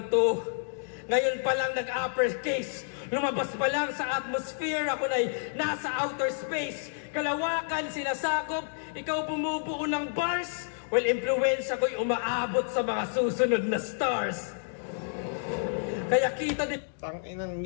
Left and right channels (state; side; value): silent; right; digital silence